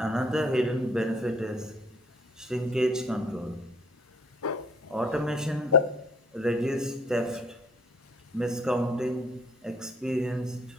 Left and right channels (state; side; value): normal; both; correlation 0.60